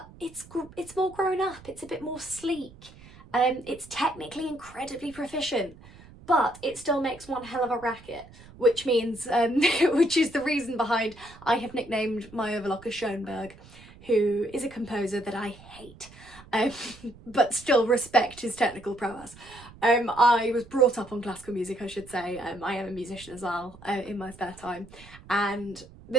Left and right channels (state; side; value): noise; right; rumble, 21 dB below the sound